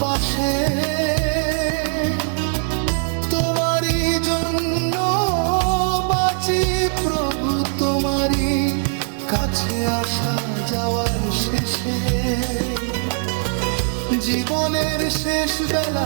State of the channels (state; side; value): silent; left; digital silence